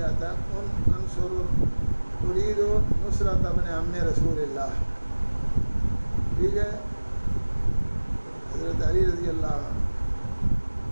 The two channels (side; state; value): both; inverted; correlation -1.00